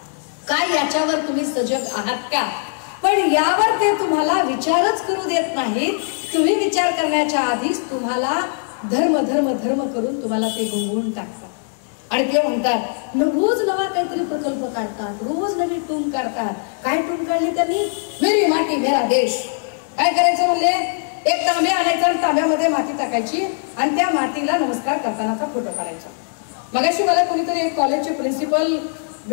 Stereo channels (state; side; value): silent; right; 65 dB below the other